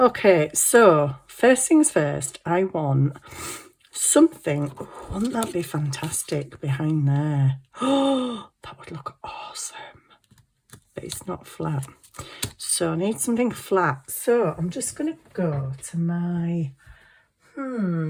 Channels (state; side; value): identical; both; correlation 1.00